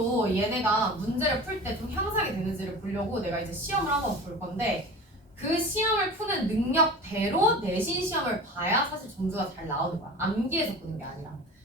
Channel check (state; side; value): normal; both; correlation 0.35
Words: 얘네가 문제를 풀 때 좀 향상이 되는지를 보려고 내가 이제 시험을 한번 볼 건데 그 시험을 푸는 능력대로 내신 시험을 봐야 사실 점수가 잘 나오는 거야. 암기해서 보는 게 아니라.